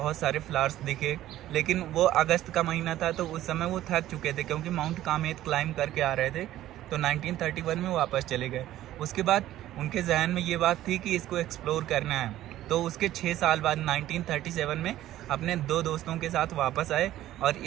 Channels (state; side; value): quieter; left; 13.8 dB